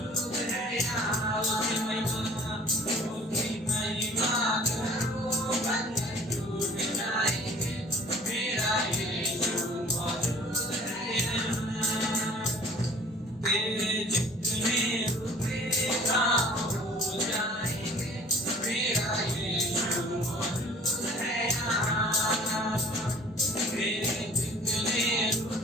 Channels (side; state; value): both; normal; correlation 0.50